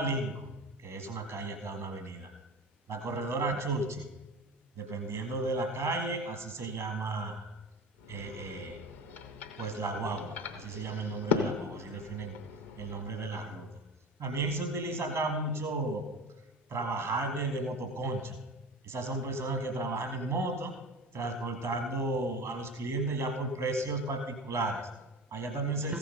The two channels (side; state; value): both; normal; correlation 0.31